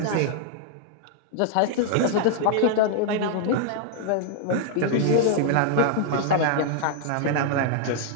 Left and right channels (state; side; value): different; both; correlation -0.01